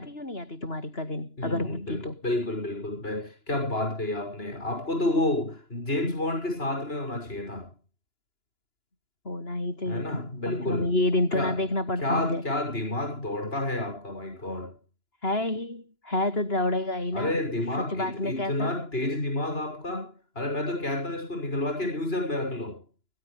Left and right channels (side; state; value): right; late; 2.9 ms